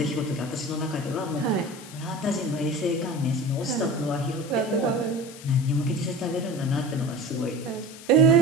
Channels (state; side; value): noise; left; hiss, 17 dB below the sound